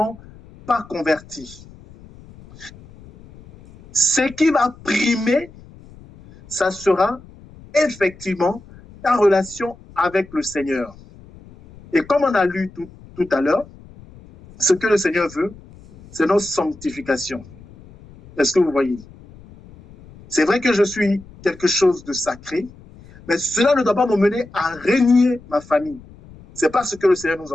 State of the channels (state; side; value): noise; left; rumble, 22 dB below the sound